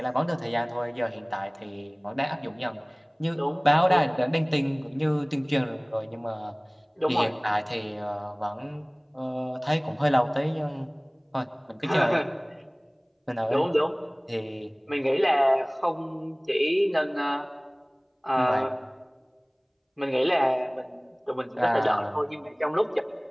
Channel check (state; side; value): identical; both; correlation 1.00